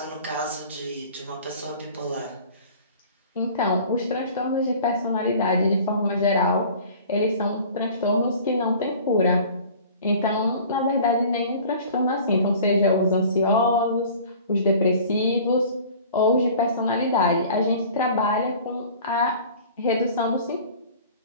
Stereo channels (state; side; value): inverted; both; correlation -0.45